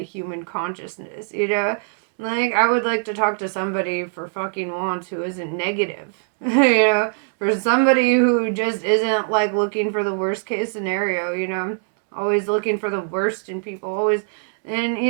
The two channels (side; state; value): left; silent; digital silence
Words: human consciousness, like, I would like to talk to somebody for fucking once who isn't negative, for somebody who just isn't, like, looking for the worst case scenario, always looking for the worst in people, always. And,